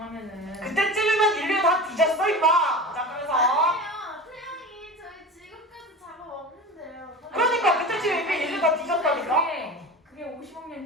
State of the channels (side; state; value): both; normal; correlation 0.31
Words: 그때쯤이면 인류 다 뒤졌어 임마. 자 그래서 아니에요. 태양이 저희 지금까지 작업 없는데요. 그러니까 그때쯤 이미 인류 다 뒤졌다니까. 그게 50억